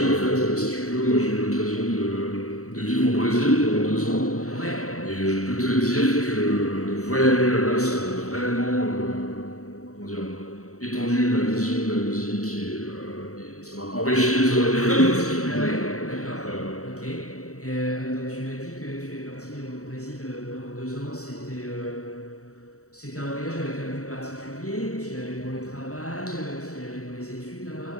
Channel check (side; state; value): right; late; 0.65 ms